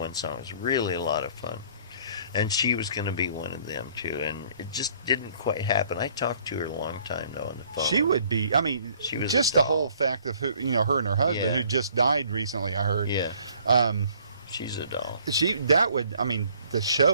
song. It was really a lot of fun. And she was going to be one of them, too, and it just didn't quite happen. I talked to her a long time, though, on the phone. She would be, I mean, She was just the whole fact of who, her and her husband, Yeah. who just died recently, I heard. Yeah. She's a doll. The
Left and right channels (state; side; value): inverted; both; correlation -0.59